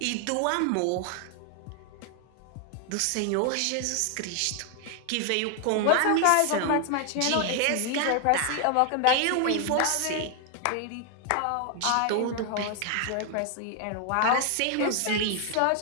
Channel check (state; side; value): different; both; correlation 0.00